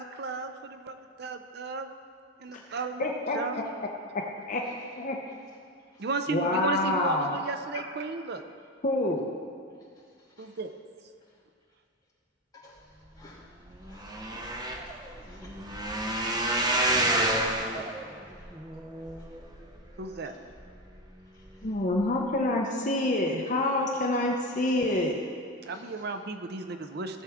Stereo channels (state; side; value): normal; both; correlation 0.15